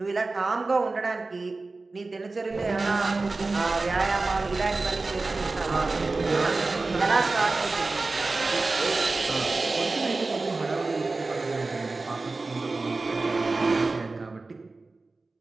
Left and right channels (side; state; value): left; quieter; 3.5 dB